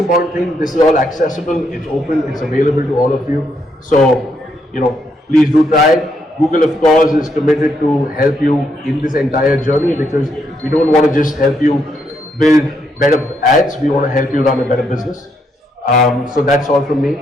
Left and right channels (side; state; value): both; normal; correlation 0.76